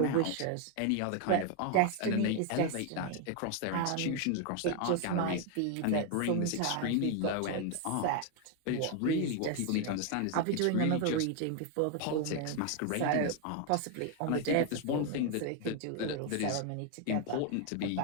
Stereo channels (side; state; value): both; different; correlation 0.01